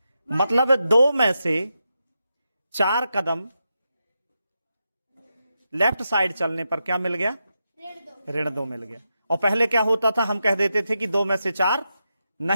मतलब 2 में से 4 कदम लेफ्ट साइड चलने पर क्या मिल गया? ऋण 2 मिल गया। और पहले क्या होता था? हम कह देते थे कि 2 में से 4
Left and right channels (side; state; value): both; inverted; correlation -0.87